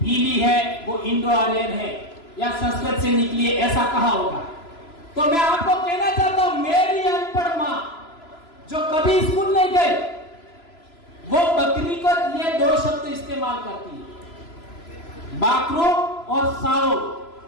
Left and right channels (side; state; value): right; late; 3.0 ms